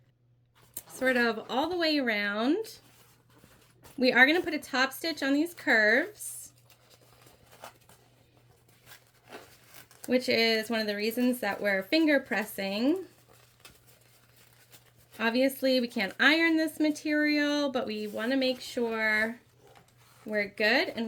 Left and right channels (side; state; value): both; identical; correlation 1.00